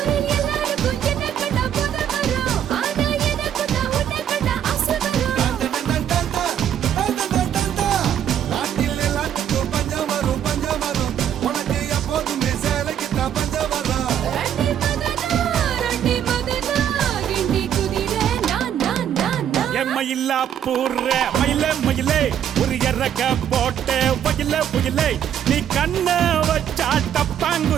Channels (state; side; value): quieter; left; 9.7 dB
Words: எல்லாருக்கும் என்ன கண்டா போத வரும் ஆனா எனக்கு தான் உன்னை கண்டா ஆசை வரும் நாட்டில் எல்லாத்துக்கும் பஞ்சம் வரும் உனக்கு எப்போதுமே சேலைக்குத்தான் பஞ்சம் வரும் ரண்டி மதனா கிண்டி குதிரை நான் எம்மையில்லா பூர்ற மயிலே ஒரு இறக்க போட்டு புயலே நீ கண்ண வச்சா